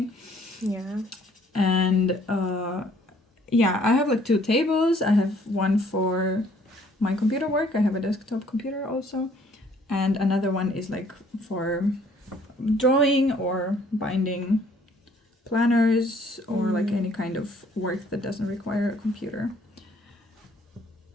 And I have like 2 tables. I have one for my computer work, I have a desktop computer also, and another one is like for drawing or binding planners or like any kind of work that doesn't require a computer.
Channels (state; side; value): normal; both; correlation 0.61